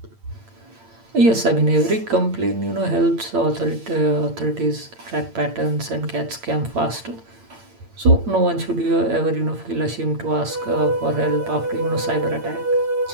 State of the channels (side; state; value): left; late; 8.8 ms